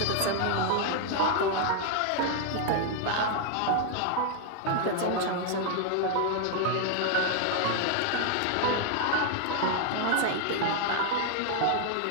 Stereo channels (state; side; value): different; both; correlation 0.00